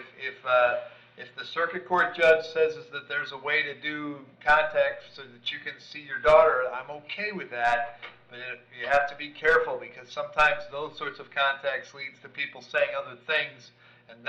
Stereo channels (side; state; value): both; identical; correlation 1.00